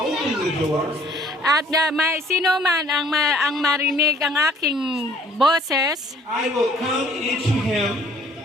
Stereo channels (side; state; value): both; normal; correlation 0.58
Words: the door, At may sino man ang marinig ang aking boses, I will come into him